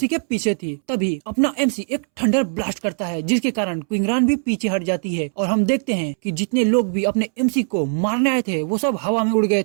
के पीछे थी। तभी अपना एमसी एक थंडर ब्लास्ट करता है, जिसके कारण क्विंगरान भी पीछे हट जाती है और हम देखते हैं कि जितने लोग भी अपने एमसी को मारने आए थे वो सब हवा में उड़ गए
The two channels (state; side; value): silent; left; 65 dB below the other